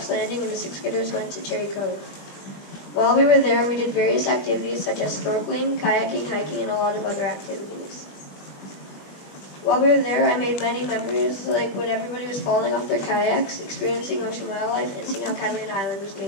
Landing and the 6th graders went to Cherry Cove. While we were there, we did various activities such as snorkeling, kayaking, hiking, and a lot of other activities. While we were there, I made many memories, like when everybody was falling off their kayaks, experiencing ocean wildlife, and seeing how Catalina Island was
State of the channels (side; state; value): right; late; 20 ms